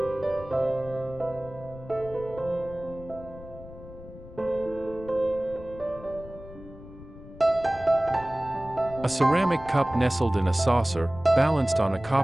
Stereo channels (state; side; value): noise; left; rumble, 17 dB below the sound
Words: A ceramic cup nestled in a saucer, balanced on a